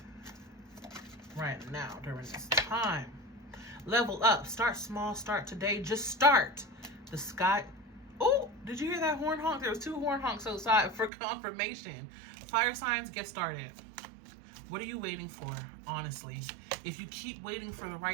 right now during this time. Level up. Start small. Start today. Just start. The sky. Oh, did you hear that horn honk? There was 2 horn honks outside for confirmation. Fire signs, get started. What are you waiting for, honestly? If you keep waiting for the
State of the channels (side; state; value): left; drops out; at 11.1 s